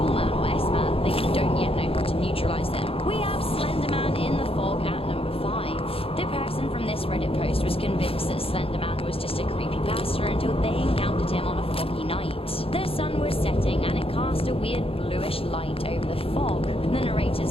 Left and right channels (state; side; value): late; right; 0.27 ms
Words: Slender Man was just a creepypasta until they encountered him on a foggy night. The sun was setting and it cast a weird bluish light over the fog. The